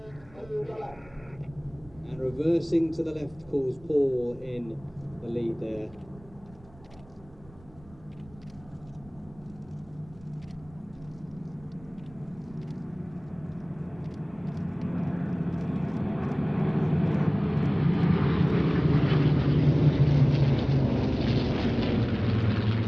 And reversing to the left calls Paul in the lead there.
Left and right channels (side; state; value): right; noise; rumble, 24 dB below the sound